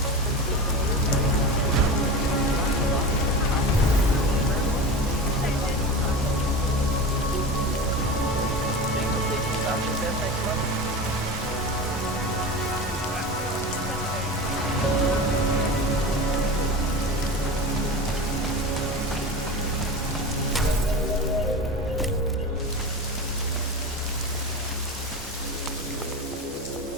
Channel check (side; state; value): both; normal; correlation 0.28